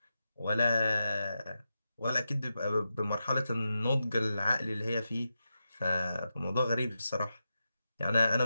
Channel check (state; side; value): inverted; both; correlation -0.89